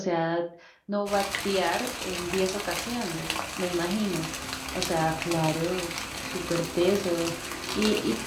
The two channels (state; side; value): identical; both; correlation 1.00